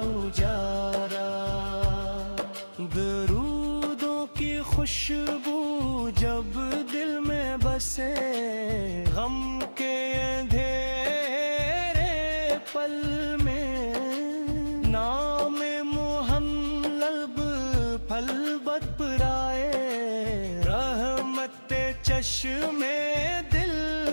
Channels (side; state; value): both; inverted; correlation -1.00